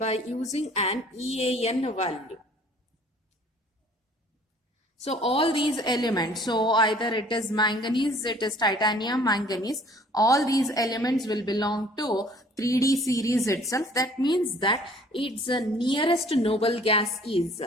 using an EAN value. So all these elements, so either it is manganese, it is titanium, manganese, all these elements will belong to 3D series itself. That means that its nearest noble gas is,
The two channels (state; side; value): normal; both; correlation 0.54